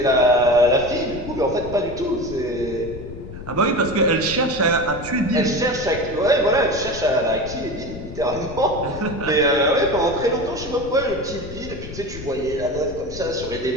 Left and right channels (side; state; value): left; noise; rumble, 12 dB below the sound